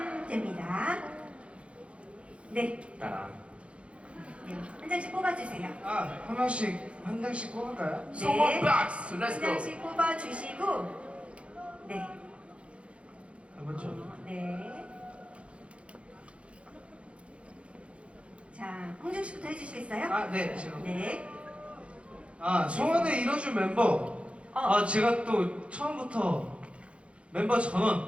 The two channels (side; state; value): left; late; 0.060 ms